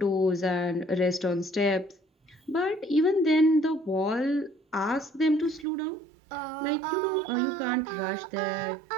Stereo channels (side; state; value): left; drops out; at 5.7 s